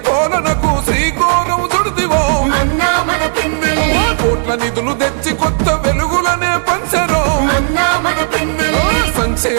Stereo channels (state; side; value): silent; left; 66 dB below the other